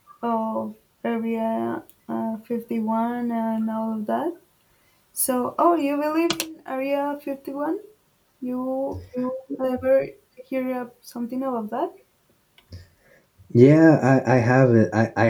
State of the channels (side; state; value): both; identical; correlation 1.00